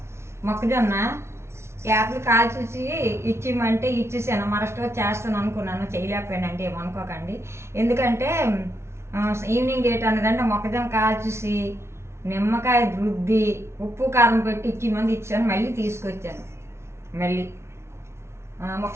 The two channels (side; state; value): left; late; 0.13 ms